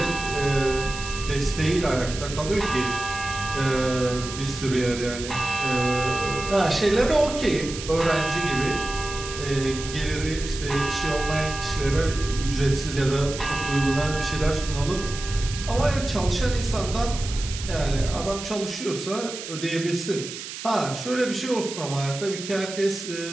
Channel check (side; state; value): right; noise; hiss, 9 dB below the sound